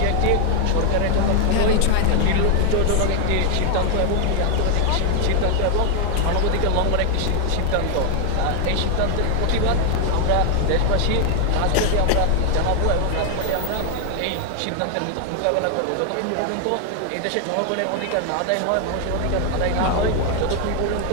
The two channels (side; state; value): both; different; correlation 0.00